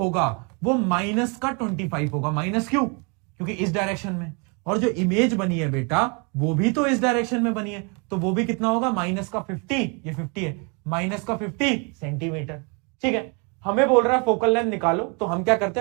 वो माइनस का 25 होगा। माइनस क्यों, क्योंकि इस डायरेक्शन में, और जो इमेज बनी है बेटा वो भी तो इस डायरेक्शन में बनी है, तो वो भी कितना होगा, माइनस का 50, ये 50 है, माइनस का 50 सेंटीमीटर। ठीक है, हमें बोल रहा है फोकल लेंथ निकालो, तो हम क्या करते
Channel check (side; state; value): left; quieter; 33.5 dB